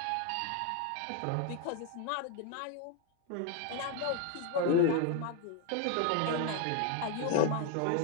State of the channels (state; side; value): different; both; correlation 0.01